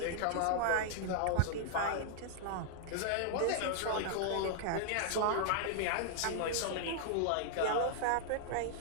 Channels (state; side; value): different; both; correlation 0.00